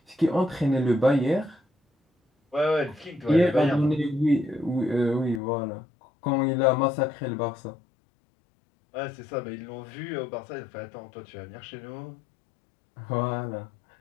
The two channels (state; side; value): drops out; right; at 5.4 s